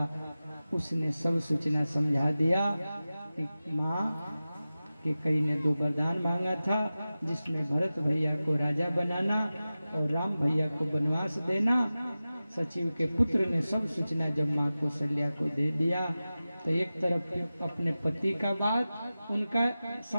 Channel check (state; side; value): inverted; both; correlation -0.95